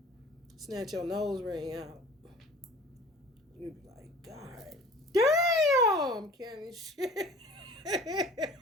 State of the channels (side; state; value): both; normal; correlation 0.45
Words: Snatch your nose ring out. You be like, God damn, kind of shit.